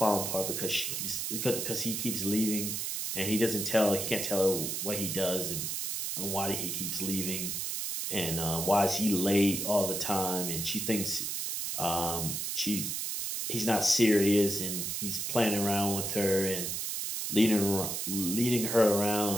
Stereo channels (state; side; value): noise; right; hiss, 2 dB below the sound